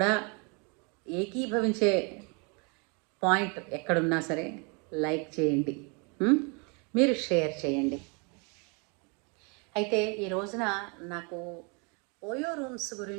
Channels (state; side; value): quieter; left; 33.5 dB